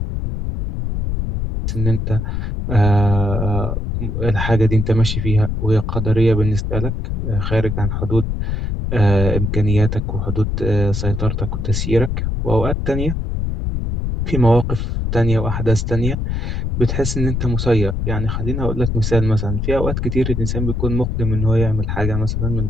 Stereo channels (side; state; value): left; noise; rumble, 2 dB below the sound